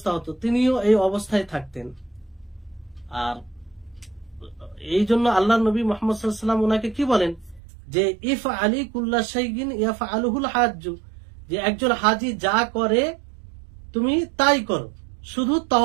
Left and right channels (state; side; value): drops out; left; at 7.6 s